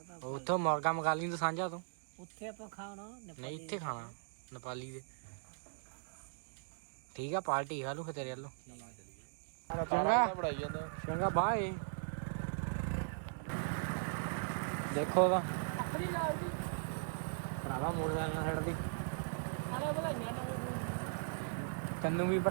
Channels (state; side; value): silent; left; digital silence